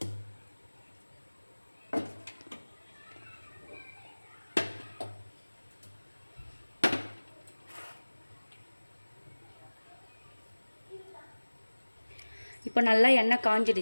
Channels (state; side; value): inverted; both; correlation -1.00